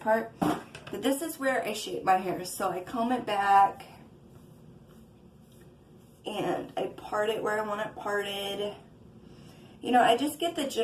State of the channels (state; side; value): identical; both; correlation 1.00